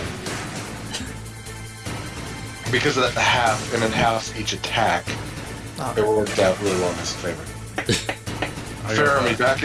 Because of that half, and it halves each attack, it worked out really well in his favor. Fair, me back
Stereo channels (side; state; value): both; identical; correlation 1.00